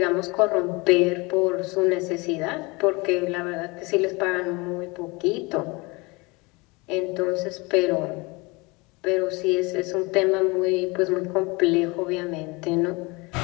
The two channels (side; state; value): right; quieter; 25.9 dB